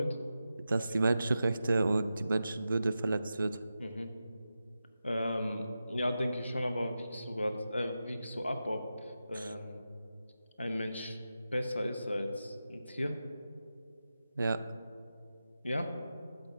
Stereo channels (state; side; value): inverted; both; correlation -0.91